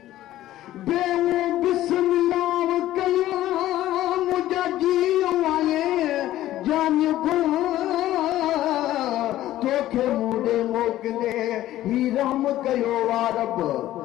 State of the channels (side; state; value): right; quieter; 14.2 dB